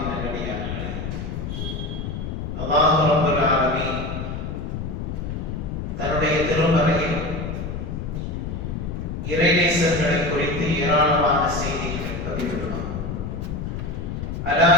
நல்லடியார்களே, அல்லாஹ் ரப்பல் ஆலமீன் தன்னுடைய திருமறையில் இறைநேசர்களை குறித்து ஏராளமான செய்திகளை பதிவிடுவார். அலா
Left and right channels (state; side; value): noise; left; rumble, 5 dB below the sound